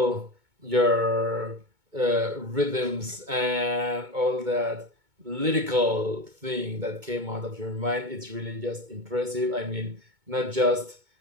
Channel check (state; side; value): late; left; 2.2 ms